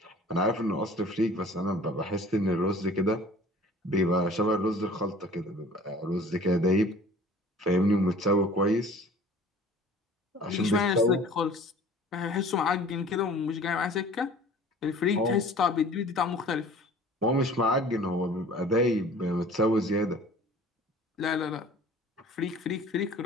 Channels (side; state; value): both; normal; correlation 0.47